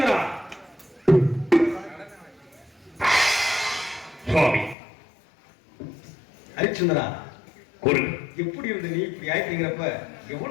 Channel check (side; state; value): right; drops out; at 4.8 s